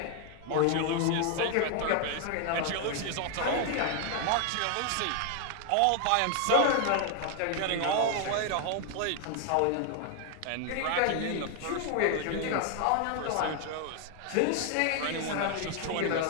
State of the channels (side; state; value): both; different; correlation 0.00